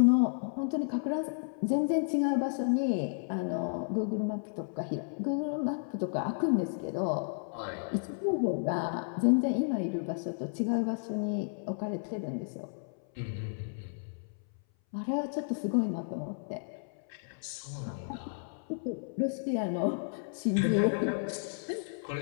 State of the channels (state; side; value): silent; right; 56 dB below the other